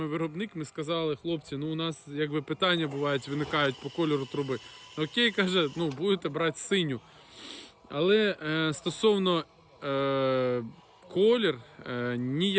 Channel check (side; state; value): both; identical; correlation 1.00